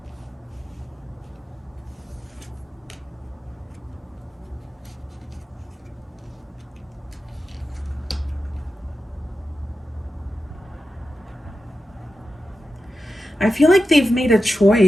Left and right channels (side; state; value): both; normal; correlation 0.91